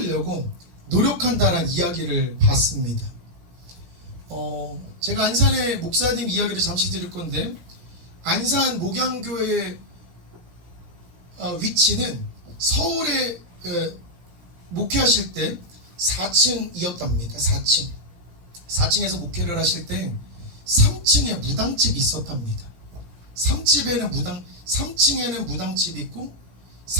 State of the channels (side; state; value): left; late; 16 ms